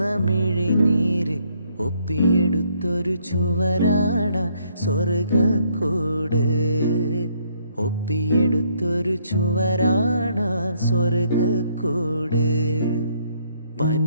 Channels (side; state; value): both; inverted; correlation -0.69